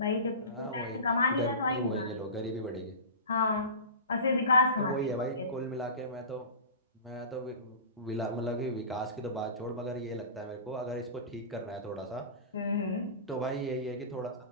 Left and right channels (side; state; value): both; inverted; correlation -0.30